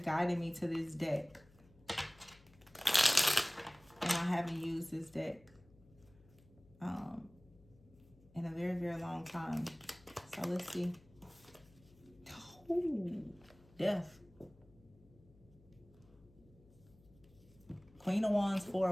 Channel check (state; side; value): noise; left; hum, 26 dB below the sound